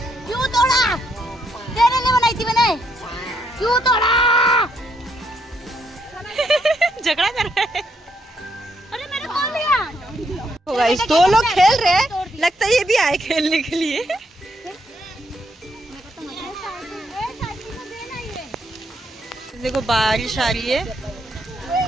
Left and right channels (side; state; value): both; normal; correlation 0.75